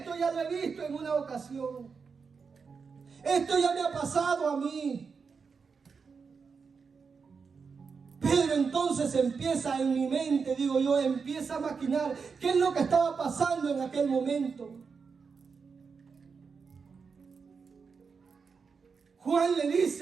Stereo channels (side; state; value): left; quieter; 5.4 dB